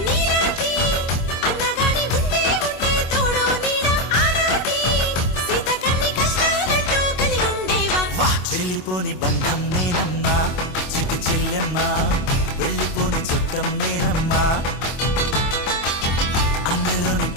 వెళ్ళిపోని బంధం నేనమ్మా, చిట్టి చెల్లెమ్మ, వెళ్ళిపోని చుట్టం నేనమ్మా, అన్నలోని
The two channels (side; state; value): right; late; 25 ms